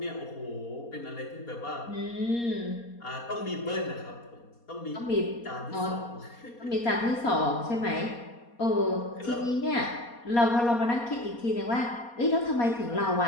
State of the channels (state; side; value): late; right; 4.2 ms